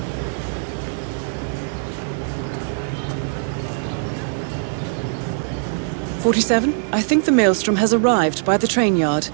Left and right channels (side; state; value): left; silent; digital silence